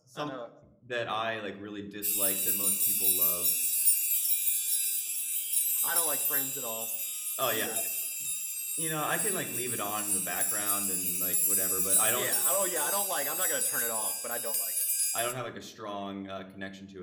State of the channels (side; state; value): both; identical; correlation 1.00